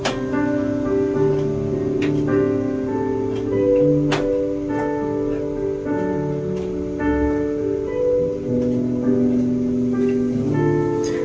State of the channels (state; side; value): identical; both; correlation 1.00